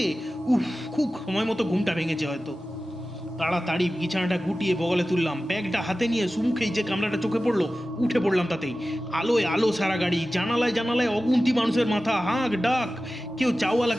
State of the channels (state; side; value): normal; both; correlation 0.95